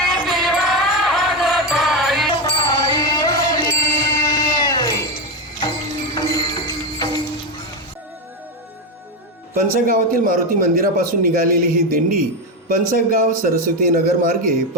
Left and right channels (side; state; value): both; normal; correlation 0.11